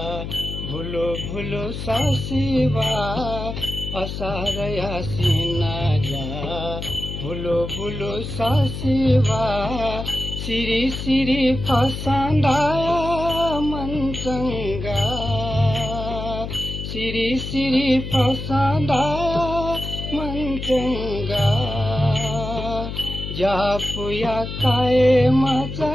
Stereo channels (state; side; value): noise; left; hum, 6 dB below the sound